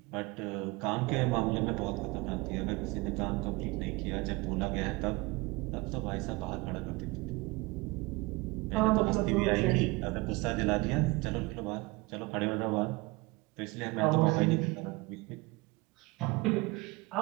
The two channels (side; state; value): left; quieter; 24.0 dB